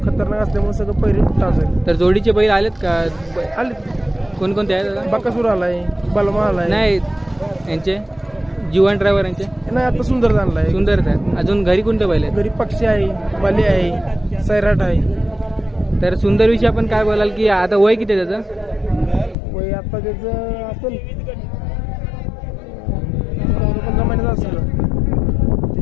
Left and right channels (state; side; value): drops out; right; at 19.4 s